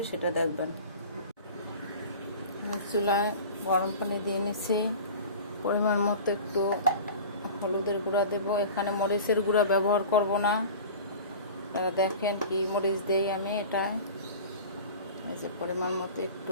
সেটা দেখবেন। চুলায় গরম পানি দিয়ে নিছি। পরিমাণ মতো একটু হলুদের গুঁড়া দেব। এখানে মরিচের গুঁড়া ব্যবহার করব না। আপনারা দেখেন কি মরিচ দেই আমি এটা। এই যে পরিমাণ মতো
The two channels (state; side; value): inverted; both; correlation -0.38